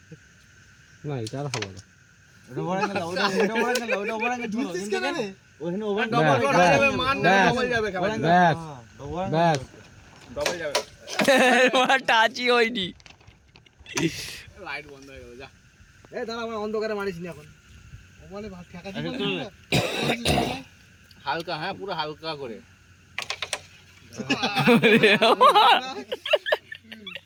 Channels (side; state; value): both; identical; correlation 1.00